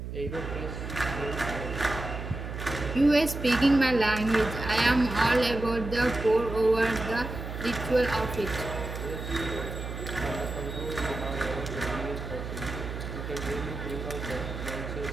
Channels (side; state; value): right; noise; hum, 7 dB below the sound